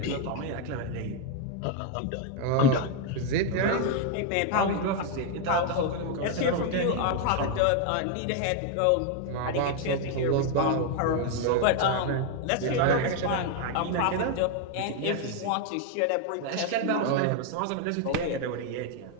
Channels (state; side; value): different; both; correlation 0.01